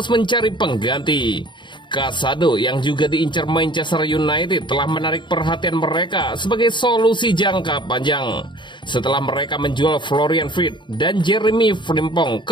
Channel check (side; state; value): right; late; 0.23 ms